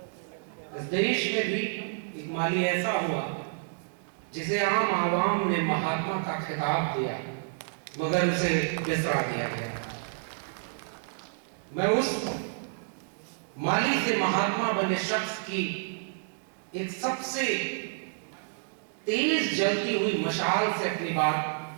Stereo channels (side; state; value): left; silent; digital silence